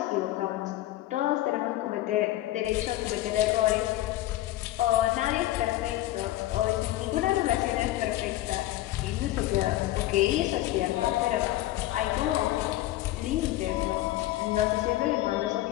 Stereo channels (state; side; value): quieter; right; 15.7 dB